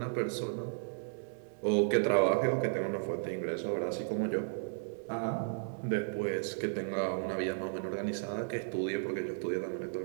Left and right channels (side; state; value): left; silent; digital silence